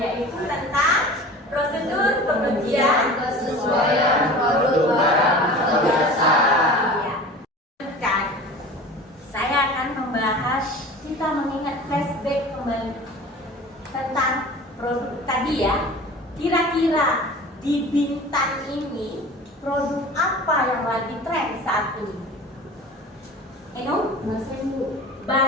tentang prosedur pengujian kesesuaian produk barang atau jasa. Saya akan membahas, kita mengingat flashback kembali tentang produk tadi ya. Kira-kira di Bintan ini produk apa yang lagi tren saat ini? Eno?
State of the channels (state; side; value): normal; both; correlation 0.39